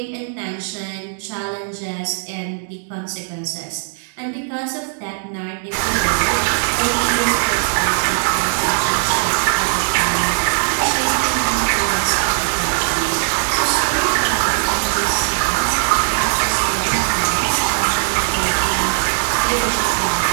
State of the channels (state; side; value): silent; left; digital silence